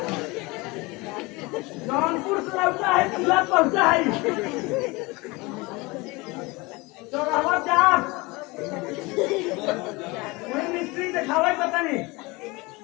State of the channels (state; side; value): quieter; right; 24.3 dB